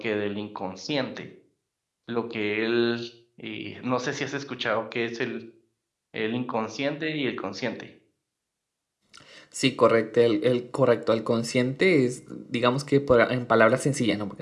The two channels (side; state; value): both; identical; correlation 1.00